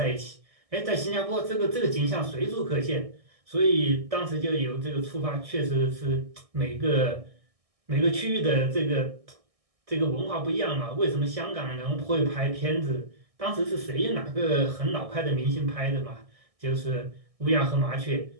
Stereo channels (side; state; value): left; late; 1.6 ms